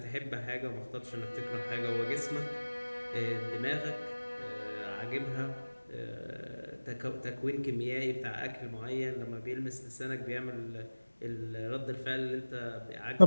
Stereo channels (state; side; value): inverted; both; correlation -1.00